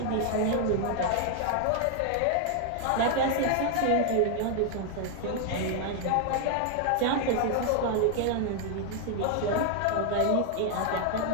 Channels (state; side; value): different; both; correlation 0.00